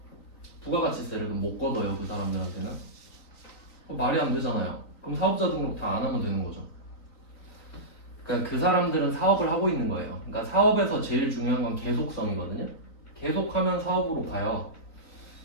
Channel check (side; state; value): right; late; 3.9 ms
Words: 부가가치세를 못 걷어요. 그 사람들한테는. 말이 안 되잖아요. 그럼 사업자 등록 다 안 하면 되는 거죠. 그러니까 그 사람들은 사업을 하고 있는 거예요. 그러니까 사업에서 제일 중요한 건 계속성이거든요. 계속하면 사업으로 가요.